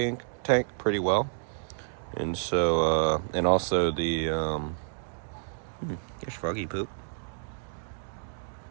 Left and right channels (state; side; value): silent; left; digital silence